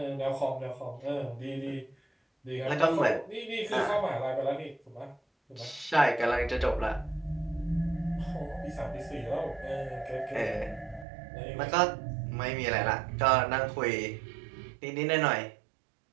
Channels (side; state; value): left; drops out; at 11.1 s